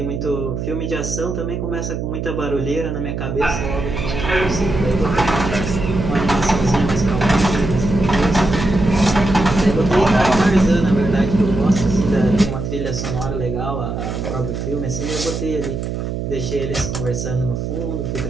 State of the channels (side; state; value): right; noise; hum, 4 dB below the sound